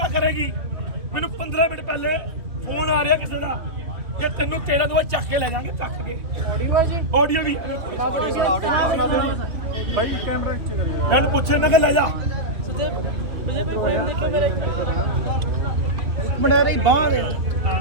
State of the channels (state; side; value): late; left; 2.7 ms